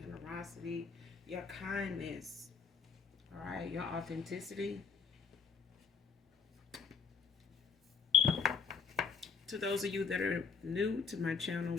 your kindness. All right, your authenticity. To those of you that are new to my channel,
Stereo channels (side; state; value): right; quieter; 5.9 dB